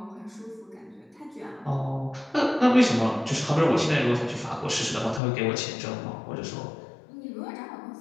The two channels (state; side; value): drops out; right; at 5.2 s